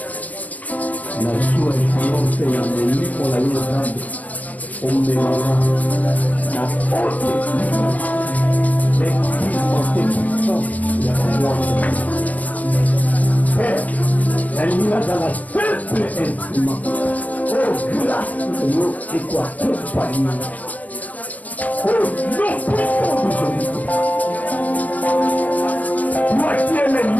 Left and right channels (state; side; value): late; right; 0.073 ms